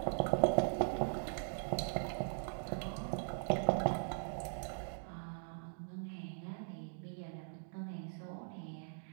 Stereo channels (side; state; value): left; silent; digital silence